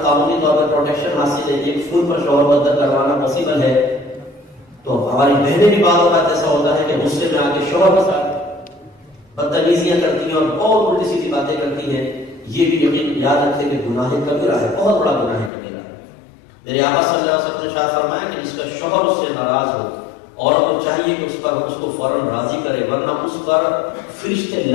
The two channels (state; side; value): drops out; right; at 15.5 s